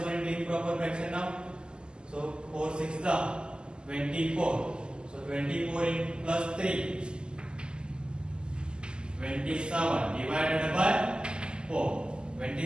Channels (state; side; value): late; left; 0.048 ms